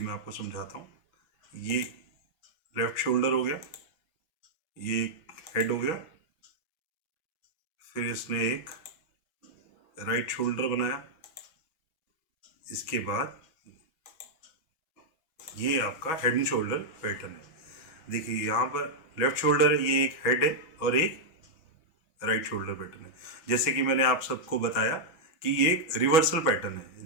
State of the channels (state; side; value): late; right; 6.2 ms